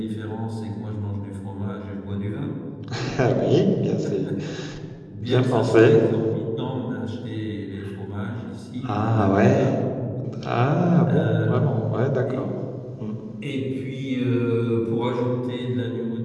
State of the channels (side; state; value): both; identical; correlation 1.00